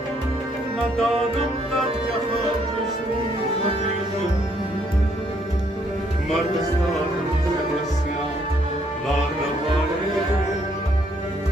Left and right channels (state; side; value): normal; both; correlation 0.69